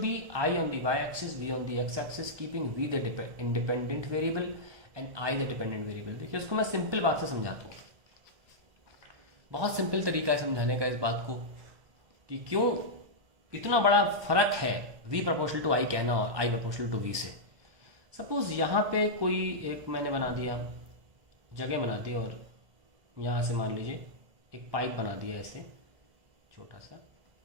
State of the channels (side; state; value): left; late; 1.2 ms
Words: be I on the Y axis, V on the X axis, keeping V the independent variable and I the dependent variable. देखिए उसको मैं सिंपल बात से समझाता हूँ, बहुत सिंपल तरीका है समझाने का इस बात को कि क्यों इतना बड़ा फर्क है v प्रोपोर्शनल टू आई कहना और i प्रोपोर्शनल टू v से। सपोज यहाँ पे कोई एक मैंने बना दिया, जगह बना दी और यहाँ से मान लीजिए एक पाइप बना दिया ऐसे छोटा सा,